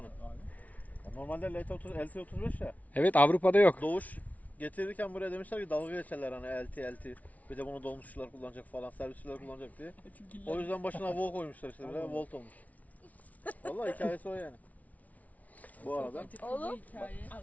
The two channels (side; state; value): right; late; 0.071 ms